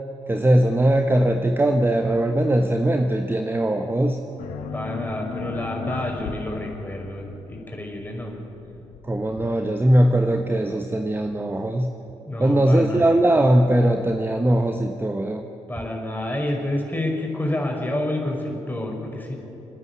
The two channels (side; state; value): both; normal; correlation 0.92